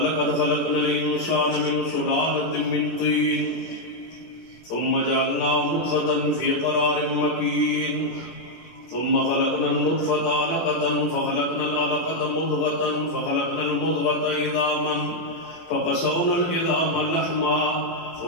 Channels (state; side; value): late; right; 18 ms